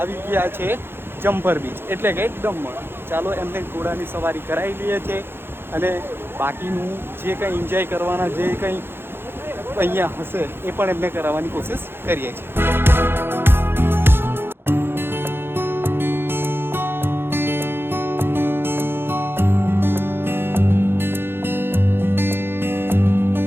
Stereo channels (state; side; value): late; left; 0.11 ms